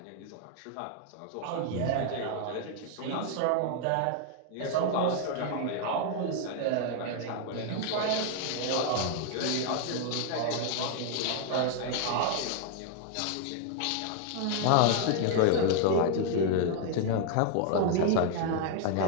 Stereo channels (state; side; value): different; both; correlation 0.00